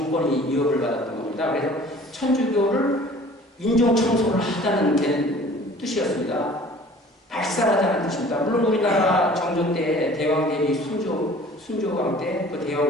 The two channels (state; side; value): normal; both; correlation 0.48